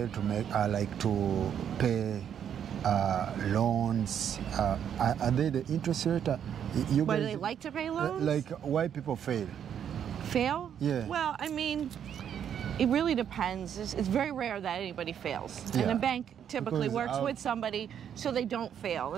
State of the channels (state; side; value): quieter; left; 8.9 dB